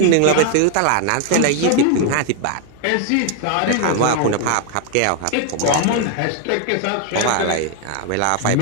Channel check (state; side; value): different; both; correlation 0.01